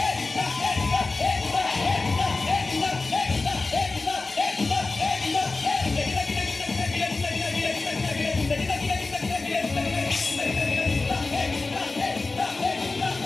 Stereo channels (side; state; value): right; quieter; 3.6 dB